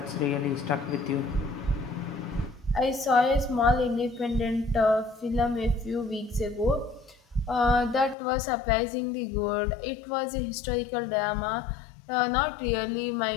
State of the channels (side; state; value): right; drops out; at 8.2 s